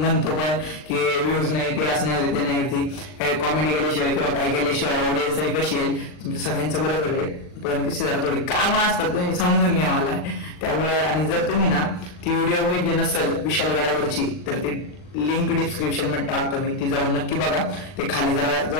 पण की व्ह्यूज नाही ते असं नाही होते ते नाही होती. काही कॉमेडी केल्याशिवाय किंवा काय केल्याशिवाय ऑडियन्स आहे कशी आहे तुमच्या सगळ्यांचं बरोबर आहे. पण कशी जरा थोडी कामं असतात तुम्ही समजून घ्या मला. त्यामुळे आणि जर तुम्ही ना ती व्हिडिओ बघितली नसेल विशालगडावरची तर ती लिंक डिस्क्रिप्शन मध्ये टाकतो मी. ती जाऊन नक्की बघा. ते खाली जरा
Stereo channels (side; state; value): right; late; 39 ms